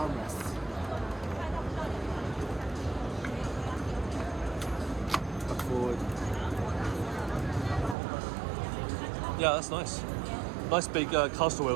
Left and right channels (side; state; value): left; drops out; at 8.0 s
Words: Look forward. Yeah, that's nice. Nice big caster